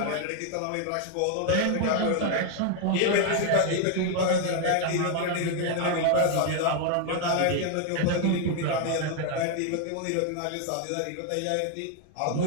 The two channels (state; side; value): different; both; correlation 0.00